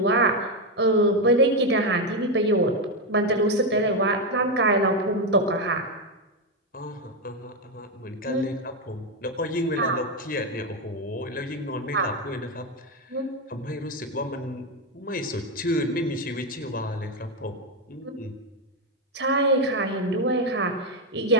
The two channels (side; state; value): both; normal; correlation 0.07